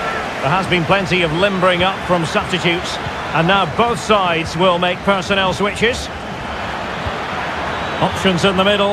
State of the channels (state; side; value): identical; both; correlation 1.00